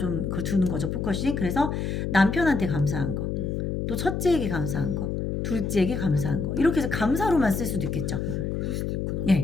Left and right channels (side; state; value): left; noise; hum, 1 dB below the sound